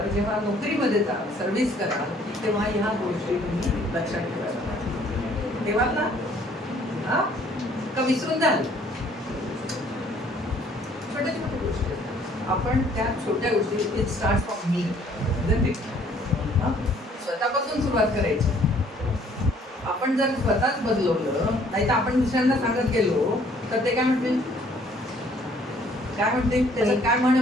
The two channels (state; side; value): normal; both; correlation 0.60